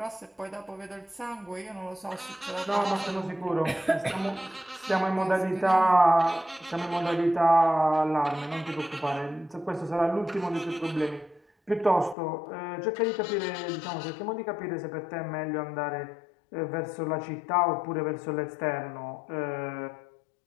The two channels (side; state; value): right; drops out; at 12.2 s